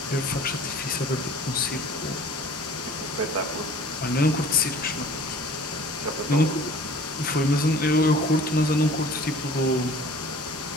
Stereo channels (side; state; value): both; normal; correlation 0.47